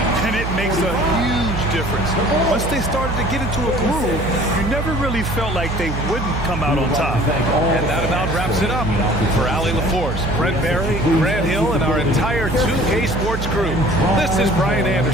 And it makes a huge difference. Once they started to get into a groove, you never really felt like they wouldn't come out on top. And that about wraps it up. For Allie LaForce, Brent Barry, Grant Hill, and our entire 2K Sports crew, this is Brian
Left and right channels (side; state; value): right; noise; hum, 4 dB below the sound